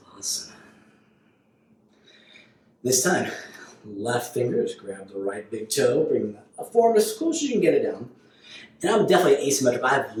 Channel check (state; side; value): identical; both; correlation 1.00